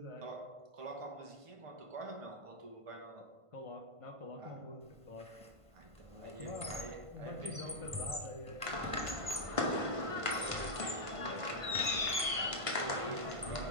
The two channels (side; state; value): left; late; 1.5 ms